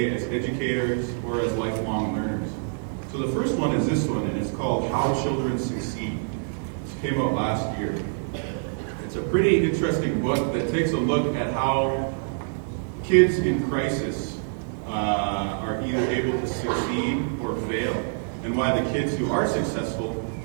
as educators or as lifelong learners. So the first one is this one, and it's called How Children Succeed. This came out last year. It's a pretty interesting book that takes a look at how kids in crisis are either able to succeed or fail, and why the kids who are successful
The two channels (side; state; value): left; silent; 61 dB below the other